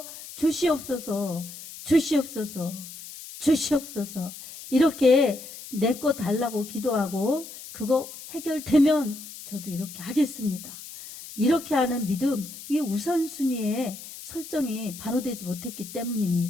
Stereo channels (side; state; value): left; noise; hiss, 14 dB below the sound